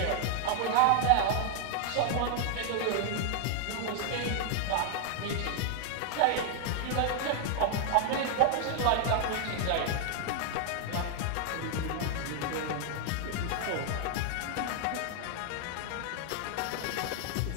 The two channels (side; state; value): both; different; correlation 0.00